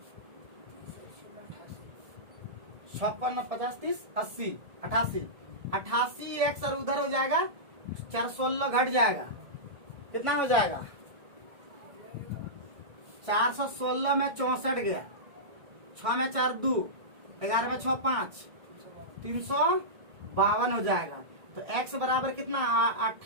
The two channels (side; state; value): left; late; 1.7 ms